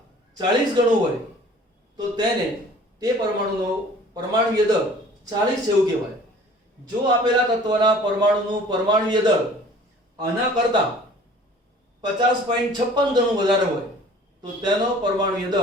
40 ગણું હોય તો તેને તે પરમાણુનો પરમાણુય દળ 40 છે એવું કહેવાય. જો આપેલા તત્વના પરમાણુનું પરમાણુય દળ આના કરતા 50.56 ગણું વધારે હોય તો તેનો પરમાણુય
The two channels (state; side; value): normal; both; correlation 0.49